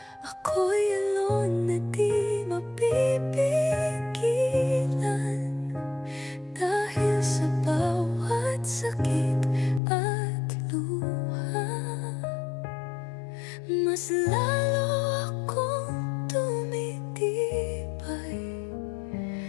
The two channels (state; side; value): drops out; right; at 9.8 s